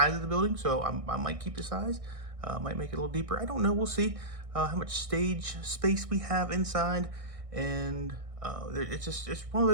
of the building, so I might keep the size. Might make it a little deeper. I don't know. We'll see how much stage space we have inside, and it's one of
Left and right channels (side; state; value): left; late; 1.6 ms